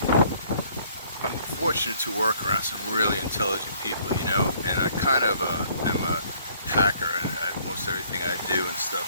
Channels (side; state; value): both; inverted; correlation -0.61